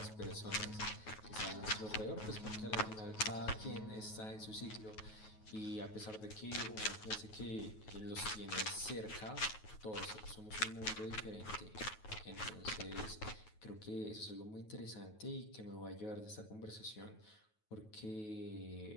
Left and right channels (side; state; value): right; late; 9.3 ms